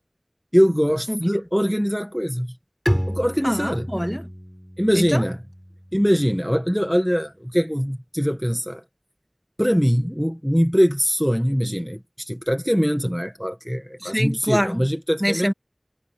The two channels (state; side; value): identical; both; correlation 1.00